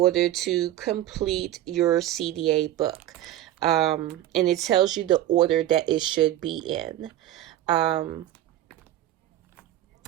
to complete your CDA book. And it tells you the order that it should be in. My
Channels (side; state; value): left; quieter; 13.4 dB